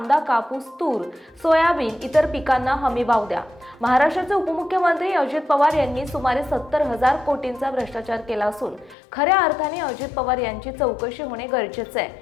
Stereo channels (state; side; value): drops out; right; at 9.0 s